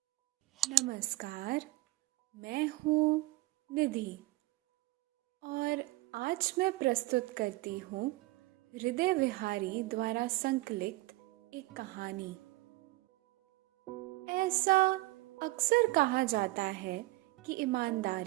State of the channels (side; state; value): left; quieter; 19.6 dB